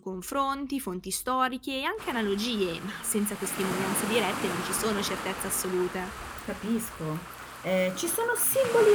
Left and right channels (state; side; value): identical; both; correlation 1.00